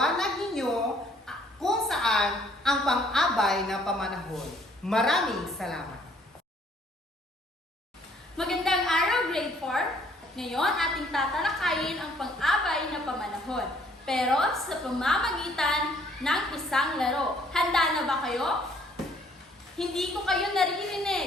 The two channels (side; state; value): both; normal; correlation 0.62